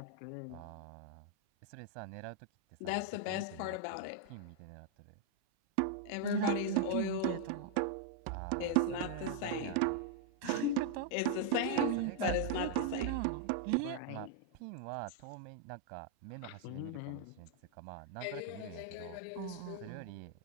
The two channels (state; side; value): different; both; correlation 0.00